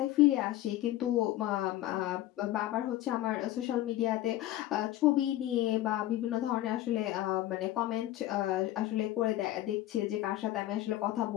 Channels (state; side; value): quieter; right; 14.6 dB